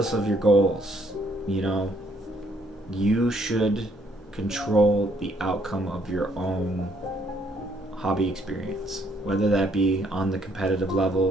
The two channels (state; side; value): normal; both; correlation 0.68